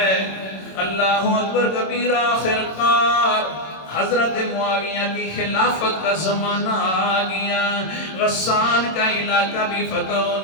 اللہ اکبر کبیرہ۔ آخرکار حضرت معاویہ کی خلافت کا زمانہ آ گیا، غسان کا علاقہ بھی فتح ہو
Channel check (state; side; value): late; right; 26 ms